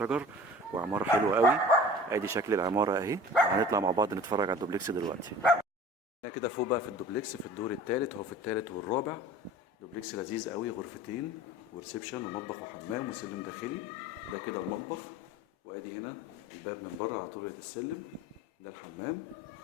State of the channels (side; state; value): both; normal; correlation 0.42